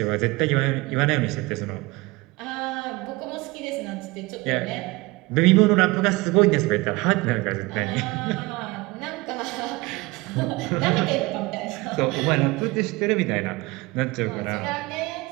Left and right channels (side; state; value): left; quieter; 22.7 dB